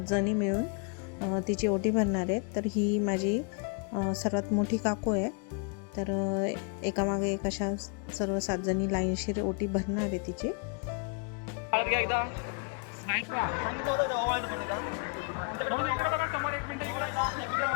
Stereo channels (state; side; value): quieter; right; 36.7 dB